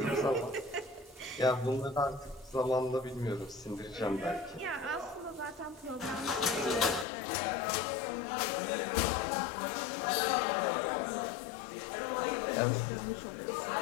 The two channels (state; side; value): drops out; right; at 7.1 s